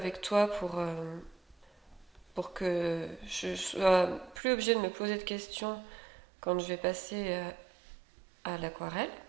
toi pour que je sois plus obligée de me poser de questions quand je vais passer à l'aquarelle.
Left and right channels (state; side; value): drops out; left; at 4.4 s